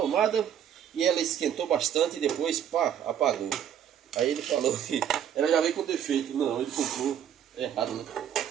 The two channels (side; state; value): left; quieter; 9.4 dB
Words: e ela esquentou bastante e depois, pá, apagou. Aí ele falou que ela já veio com defeito. Não, ele comprou errado, né?